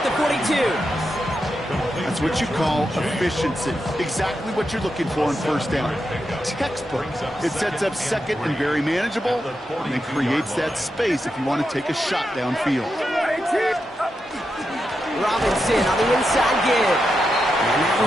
the 42. That's what you call efficiency. Exactly what you're looking for in first down. Textbook. It sets up second and very manageable, and it creates that space if you want to take a shot downfield. Robinson on the inside give. And that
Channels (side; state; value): both; normal; correlation 0.86